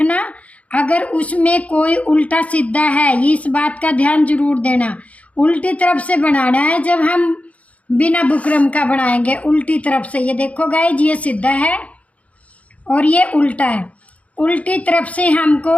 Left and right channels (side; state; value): right; late; 0.066 ms